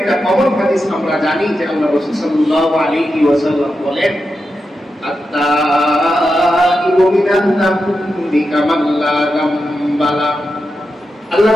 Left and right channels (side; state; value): both; normal; correlation 0.89